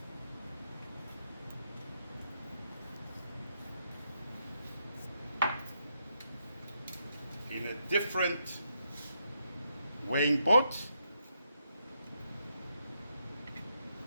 In a different weighing pot,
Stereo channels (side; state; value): both; inverted; correlation -0.80